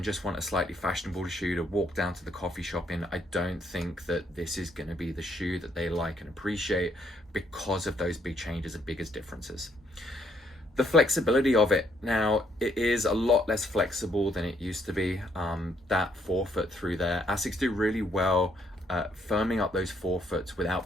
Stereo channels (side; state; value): both; normal; correlation 0.71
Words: just want a slightly fashionable shoe to walk down to the coffee shop in. I don't think that this is going to be the shoe that they like and appreciate because of those big changes and biggest differences. The flexibility of it, now it is a lot less flexible than it used to be. That forefoot through there, Asics do really well firming up those forefoots without